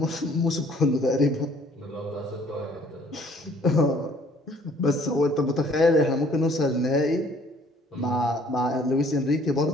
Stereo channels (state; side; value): normal; both; correlation 0.59